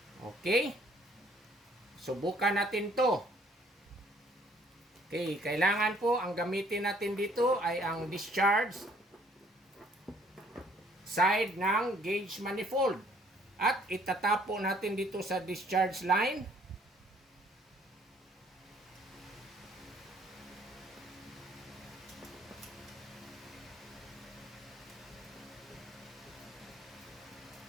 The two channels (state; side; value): normal; both; correlation 0.61